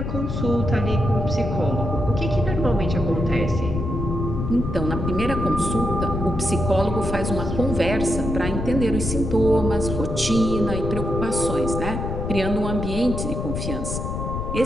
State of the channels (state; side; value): noise; left; rumble, 3 dB below the sound